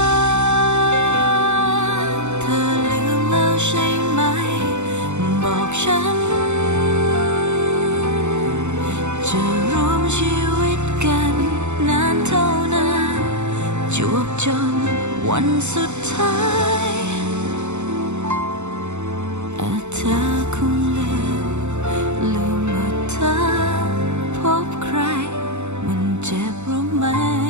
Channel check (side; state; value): left; late; 0.83 ms